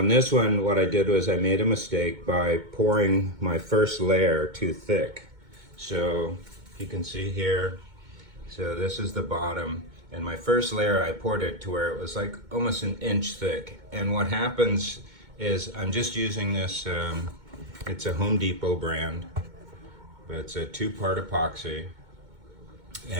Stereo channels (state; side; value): late; left; 2.2 ms